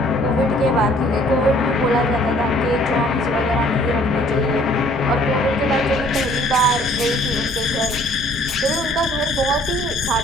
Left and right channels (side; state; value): both; normal; correlation 0.58